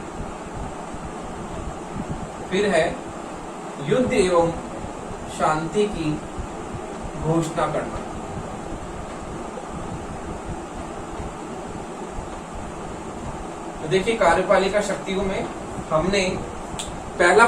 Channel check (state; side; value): identical; both; correlation 1.00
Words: फिर है युद्ध एवं शांति की घोषणा करना। तो देखिए कार्यपालिका शक्तियों में हमने पहला